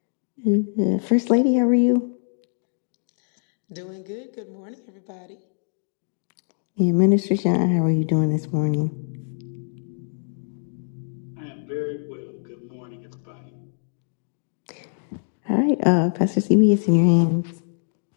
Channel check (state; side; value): silent; right; digital silence